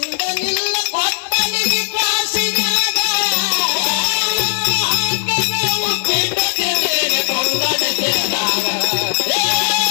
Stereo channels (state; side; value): silent; right; digital silence